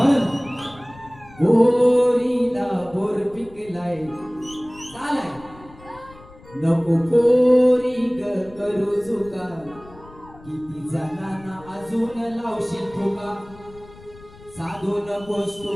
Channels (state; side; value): noise; left; rumble, 22 dB below the sound